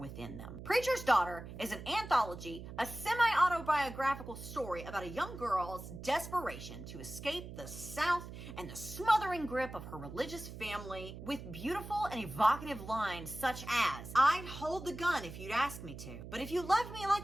them. Preacher's Daughter is an anthology, a semi-autobiographical story about a young girl's desperation to escape the South and the smothering grip of her religious family, with beautiful and evocative lines such as, I'd hold the gun if you'd ask me to, but if you loved me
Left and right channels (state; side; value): noise; right; hum, 11 dB below the sound